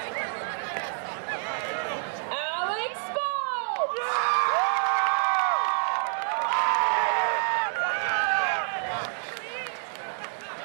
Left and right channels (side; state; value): left; silent; digital silence